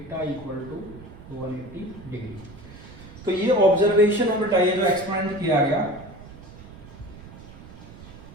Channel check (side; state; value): right; noise; rumble, 17 dB below the sound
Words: equal to 180 degree. तो ये observation है बेटा, ये जो एक्सपेरिमेंट किया गया,